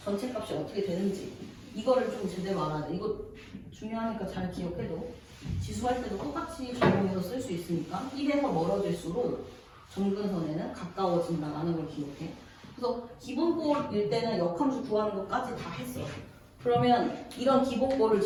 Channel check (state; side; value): identical; both; correlation 1.00